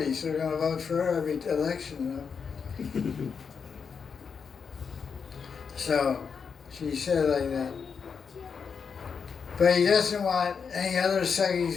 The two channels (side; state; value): right; quieter; 6.1 dB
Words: so they're going to vote for her every election. So she said like that. But he doesn't want any other